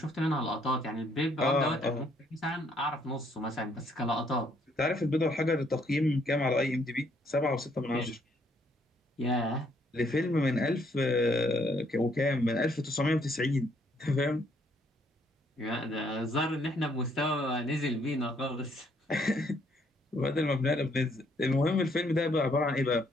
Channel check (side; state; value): both; normal; correlation 0.68